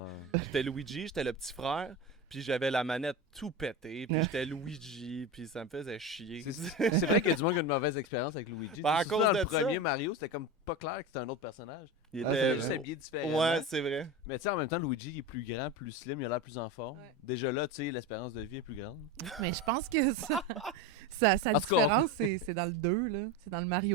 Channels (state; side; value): normal; both; correlation 0.23